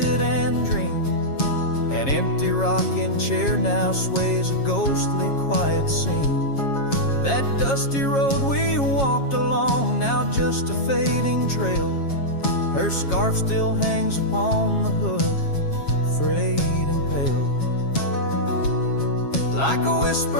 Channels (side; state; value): right; late; 7.3 ms